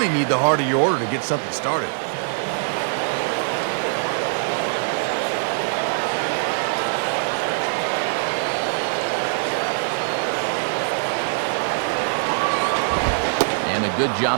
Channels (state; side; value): silent; left; digital silence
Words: need the heart of your order to get something started. And a good